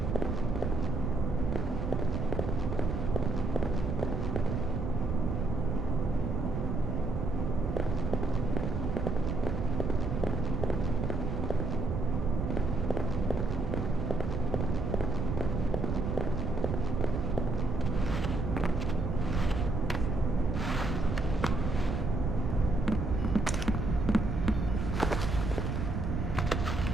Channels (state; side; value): noise; right; rumble, 1 dB below the sound